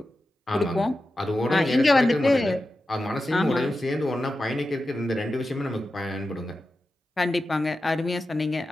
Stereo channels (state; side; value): normal; both; correlation 0.92